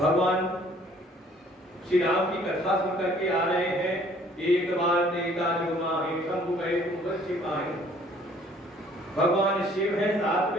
श्री राम की कथा सुन करके आ रहे हैं। एक बार देखा जो माही शंभु गए छिपाए। भगवान शिव है साथ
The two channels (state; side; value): normal; both; correlation 0.58